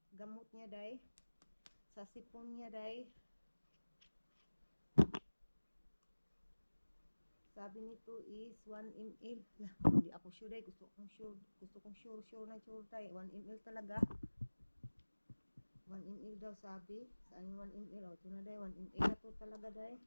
gamot niya day. Sa sipon niya day. Sabi nito is 1 ml. Hindi ako sure day. Gusto kong sure na sure day. 1 ml talaga. 1 ml daw sabi. Saan yung 1 ml? Ito na day. 1 ml na to talaga day.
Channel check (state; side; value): inverted; both; correlation -1.00